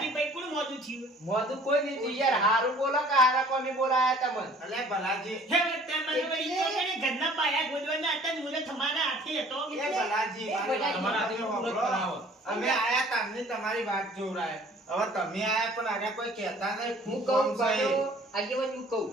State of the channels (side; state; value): both; normal; correlation 0.52